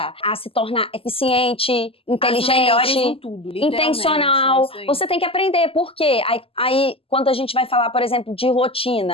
a se tornar eficiente, inteligente, as melhores em tudo, intencional. é isso aí. Você tem que aprender. Por quê? Aí, quando a gente vai falar, por exemplo, de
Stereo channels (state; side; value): late; right; 0.27 ms